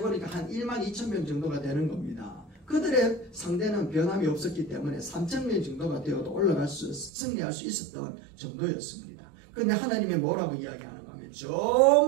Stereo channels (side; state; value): left; drops out; at 7.1 s